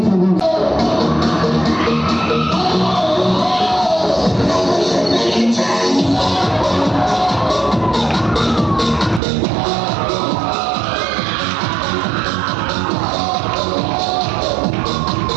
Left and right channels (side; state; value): left; drops out; at 9.2 s